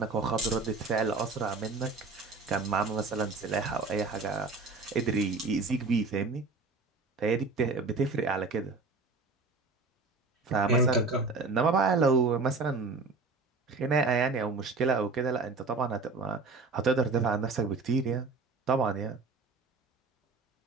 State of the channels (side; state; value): left; quieter; 4.0 dB